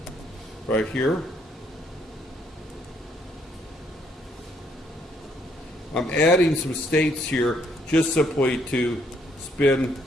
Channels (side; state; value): both; normal; correlation 0.70